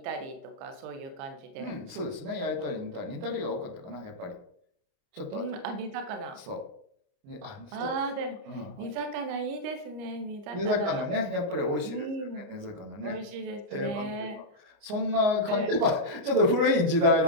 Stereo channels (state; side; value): late; left; 29 ms